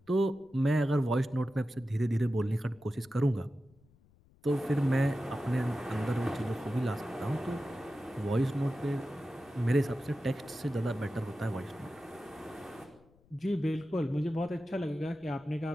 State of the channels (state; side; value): noise; left; rumble, 30 dB below the sound